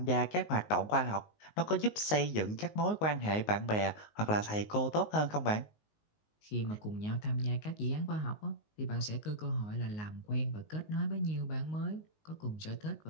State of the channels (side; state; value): right; late; 19 ms